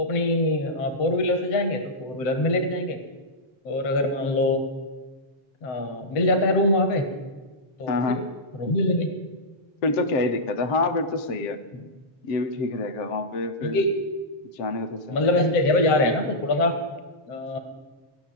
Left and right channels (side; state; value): right; late; 7.8 ms